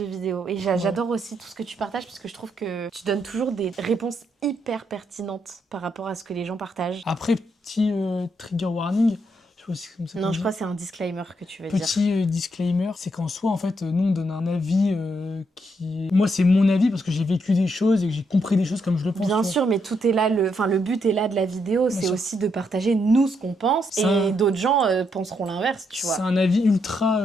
vidéo. Et j'adore aussi tout ce que tu partages parce que je trouve que tu donnes toujours des réponses hyper pertinentes par rapport à ce que les gens partagent. Après, petit trigger warning. Comme ça Non, je crois que c'est un disclaimer que tu veux dire. Petit disclaimer, c'est qu'en soi, en fait, nous, on donne un avis qui... Moi, c'est mon avis parce que j'ai vécu des choses et que j'ai compris des choses comme je le pense. Bien sûr, mais tout est là, le but est là de la vidéo, c'est aussi de partager nous ce qu'on pense et d'autres gens penseront l'inverse, tu vois. C'est un avis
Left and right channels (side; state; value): both; normal; correlation 0.78